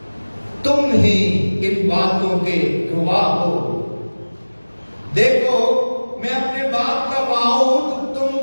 تم ہی ان باتوں کے گواہ ہو۔ دیکھو میں اپنے باپ کا وعود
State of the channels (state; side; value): inverted; both; correlation -1.00